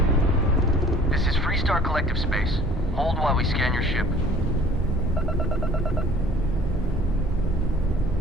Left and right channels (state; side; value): normal; both; correlation 0.51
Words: This is Freestar Collective Space. Hold while we scan your ship.